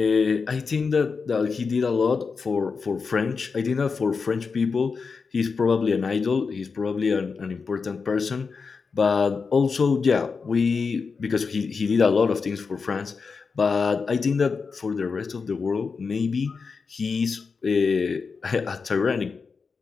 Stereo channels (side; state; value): right; quieter; 5.0 dB